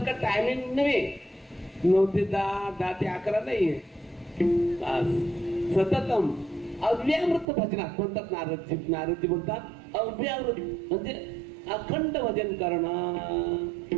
टायमिंग नव्हे, 9 ते 10, 10 ते 11 नाहीये, सततम अव्यावृत भजनात म्हणतात नारदजी। नारदजी म्हणतात अव्यावृत म्हणजे अखंड भजन करणं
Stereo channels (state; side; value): drops out; left; at 7.5 s